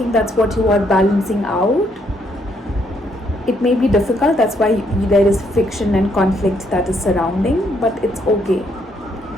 that's what you are balancing out. It may be difficult, that's why there is friction and conflict that is surrounding, but it's okay.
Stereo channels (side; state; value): both; normal; correlation 0.72